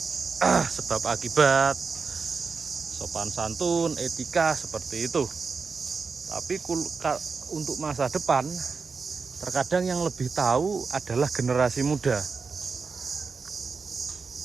sebab akibat, sopan santun, etika seperti itu. Tapi untuk masa depan, terkadang yang lebih tahu adalah generasi muda.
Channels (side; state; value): left; quieter; 4.9 dB